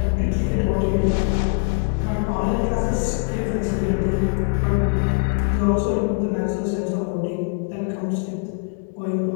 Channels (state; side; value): silent; right; 60 dB below the other